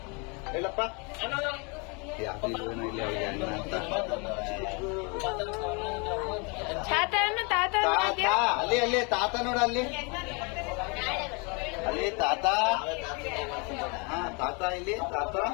ಹೇಳಪ್ಪ, ಯಾವ್ದು ಏನೋ ಇಲ್ಲ ಅಣ್ಣ ಅಂತ. ತಾತ ಅಲ್ಲಿ ಅಲ್ಲಿ ತಾತ ನೋಡ, ಅಲ್ಲಿ ಅಲ್ಲಿ ತಾತ. ಹಾ ತಾತ, ಇಲ್ಲಿ ತಾತ.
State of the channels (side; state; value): right; quieter; 31.9 dB